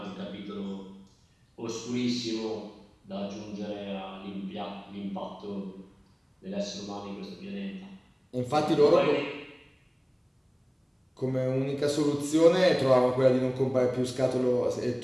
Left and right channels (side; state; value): both; identical; correlation 1.00